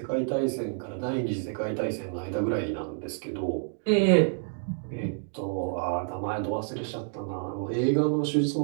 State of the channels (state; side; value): silent; left; digital silence